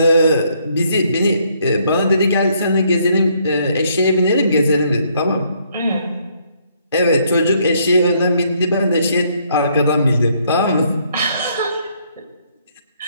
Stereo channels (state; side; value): inverted; both; correlation -0.69